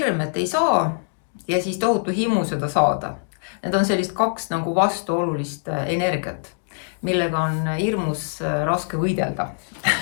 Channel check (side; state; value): right; silent; digital silence